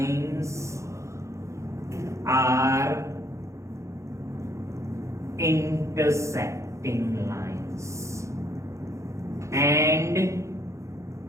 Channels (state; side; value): late; left; 0.14 ms